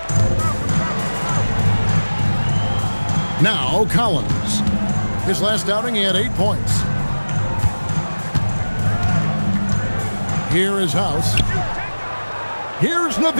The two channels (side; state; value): both; inverted; correlation -1.00